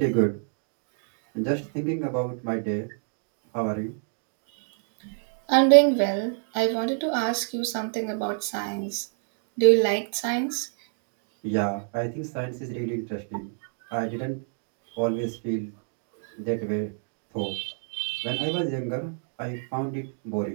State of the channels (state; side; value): silent; left; 59 dB below the other